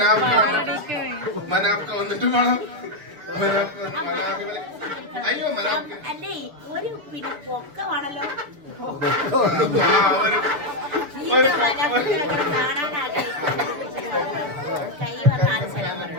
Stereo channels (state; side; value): late; left; 6.8 ms